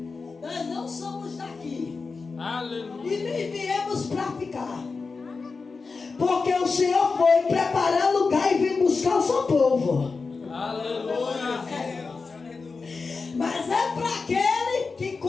nós não somos daqui. Aleluia. E nem viemos para ficar. Porque o Senhor foi preparar lugar e vir buscar o seu povo. Aleluia. Mas é para aquele que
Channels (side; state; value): right; quieter; 4.4 dB